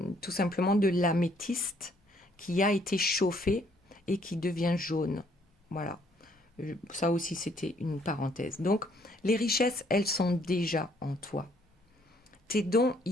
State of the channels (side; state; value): both; normal; correlation 0.65